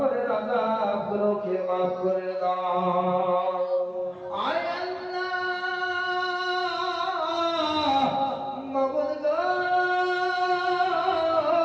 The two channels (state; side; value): identical; both; correlation 1.00